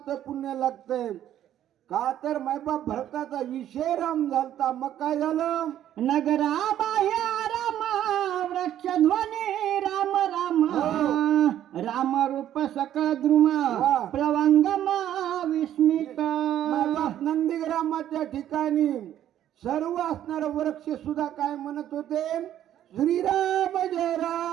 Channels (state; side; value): quieter; left; 11.4 dB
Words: पुण्य लागतंय. का तर मायबाप भरताचा विषय राम झालता. मग काय झालं नगरा बाह्य राम वृक्षध्वनी राम राम. राम रूप सकळ द्रुम प्लवंगम विस्मित. मायबाप नंदीग्रामाच्या ठिकाणी सर्व असणार वृक्ष सुद्धा काय म्हणत होते श्रीराम जय